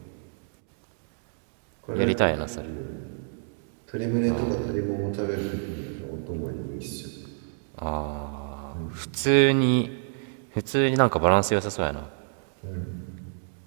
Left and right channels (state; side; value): silent; left; digital silence